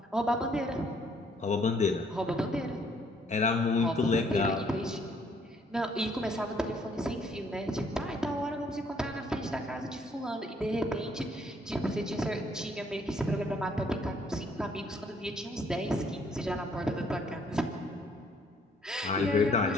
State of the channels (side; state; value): both; normal; correlation 0.65